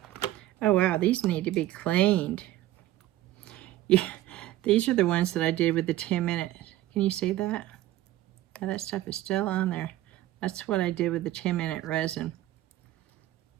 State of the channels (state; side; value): quieter; left; 14.8 dB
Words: Oh wow, these need to be cleaned. Yeah, these are the ones that I did with the 10-minute. Can you see that? Yeah, that stuff is still on there. That's what I did with the 10-minute resin.